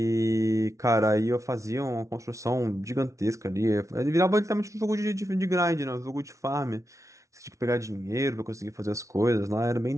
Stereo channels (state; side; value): late; left; 0.15 ms